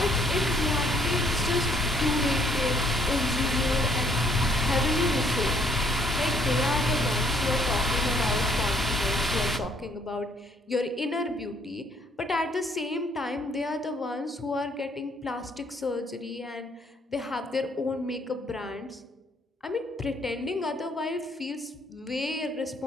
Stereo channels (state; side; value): normal; both; correlation 0.65